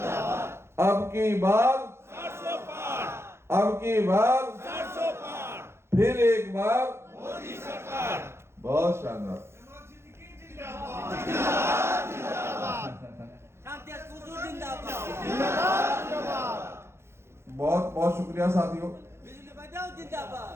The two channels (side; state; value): left; late; 0.12 ms